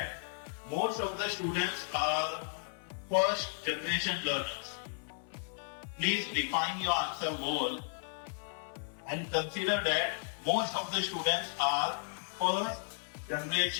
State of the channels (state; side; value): silent; right; 55 dB below the other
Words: most of the students are first generation learners. Please refine your answer more and consider that most of the students are first